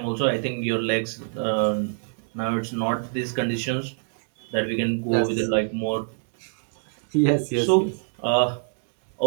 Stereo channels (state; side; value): silent; left; digital silence